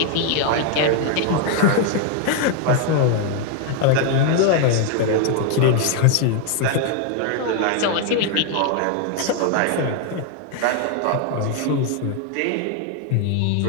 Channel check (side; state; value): both; different; correlation 0.00